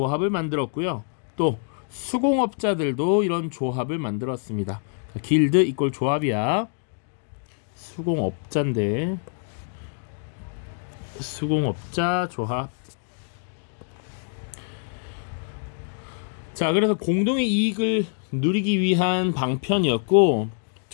만들었고요. 또 수공업자들도 이런 조합을 만들었습니다. 길드 이꼴 조합이야. 수공업자인데 수공업자 조합. 자, 그래서 공동의 이익을 누리기 위한 방편이었고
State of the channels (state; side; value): silent; right; 61 dB below the other